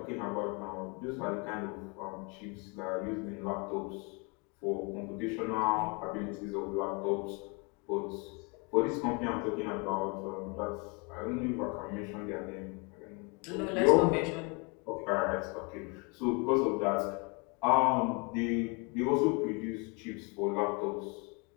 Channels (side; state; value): right; quieter; 31.8 dB